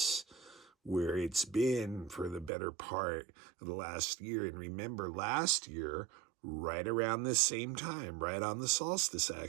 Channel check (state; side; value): drops out; left; at 2.5 s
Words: where it's been for the better part of the last year. And remember, last year, right around this same time, right on the solstice